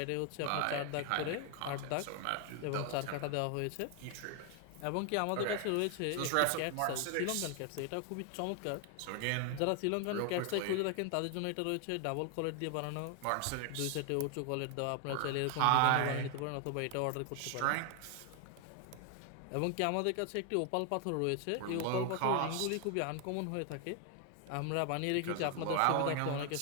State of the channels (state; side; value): different; both; correlation 0.00